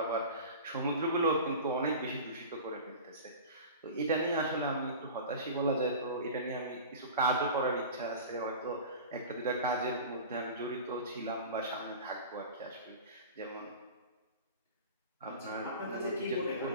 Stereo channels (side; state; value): both; inverted; correlation -0.35